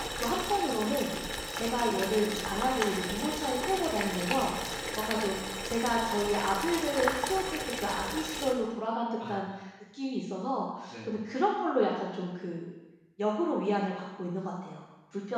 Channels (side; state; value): both; identical; correlation 1.00